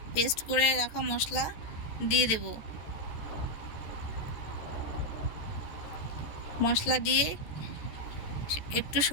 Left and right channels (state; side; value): late; right; 14 ms